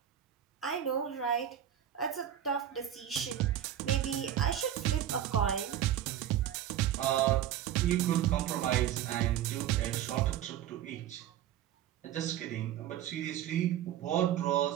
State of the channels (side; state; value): left; quieter; 11.0 dB